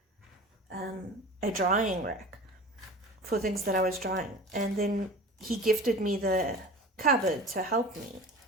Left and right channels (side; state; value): both; normal; correlation 0.38